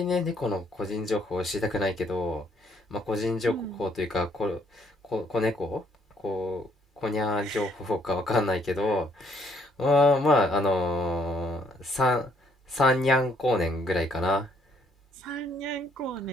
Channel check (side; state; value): both; normal; correlation 0.68